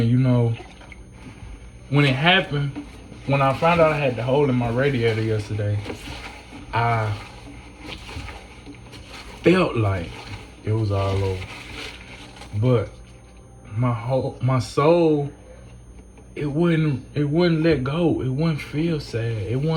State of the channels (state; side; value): identical; both; correlation 1.00